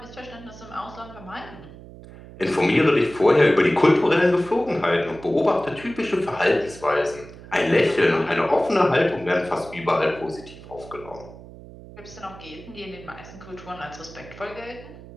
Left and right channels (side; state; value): right; noise; hum, 17 dB below the sound